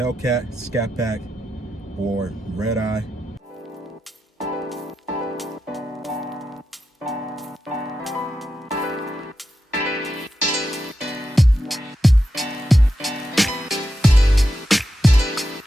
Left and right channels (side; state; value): both; normal; correlation 0.88